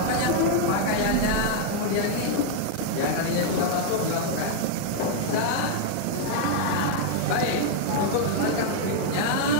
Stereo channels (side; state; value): both; different; correlation 0.00